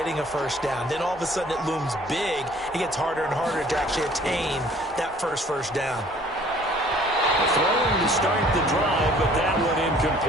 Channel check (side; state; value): both; normal; correlation 0.55